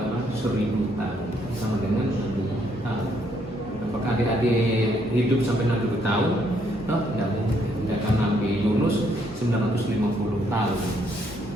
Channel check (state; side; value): normal; both; correlation 0.71